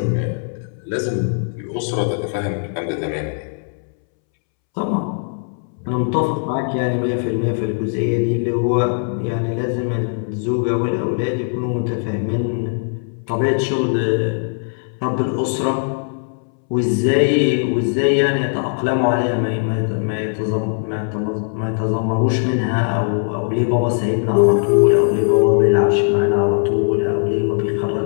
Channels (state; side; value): silent; right; 65 dB below the other